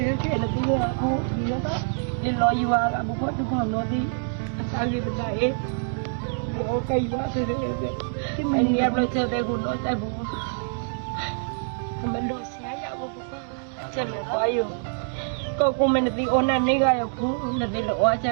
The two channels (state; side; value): silent; left; digital silence